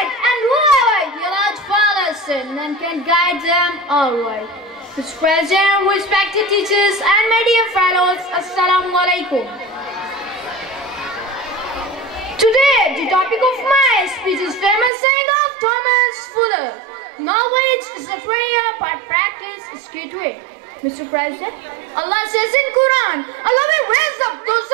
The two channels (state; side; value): drops out; left; at 14.9 s